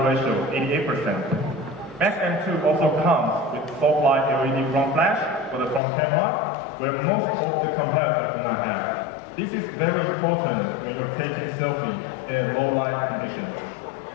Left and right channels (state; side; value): drops out; right; at 5.8 s